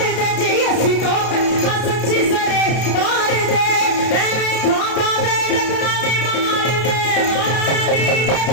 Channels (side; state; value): right; late; 32 ms